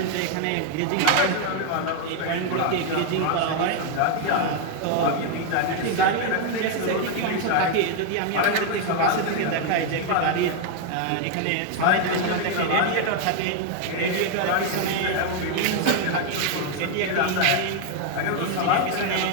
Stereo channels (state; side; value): different; both; correlation 0.00